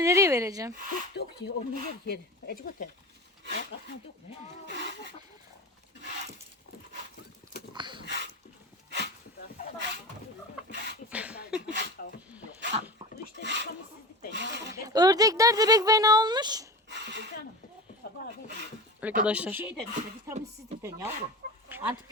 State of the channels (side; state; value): both; normal; correlation 0.29